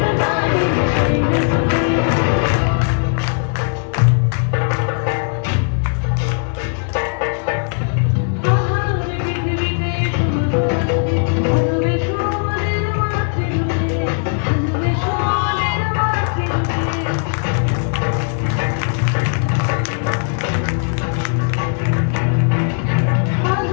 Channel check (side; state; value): right; silent; 56 dB below the other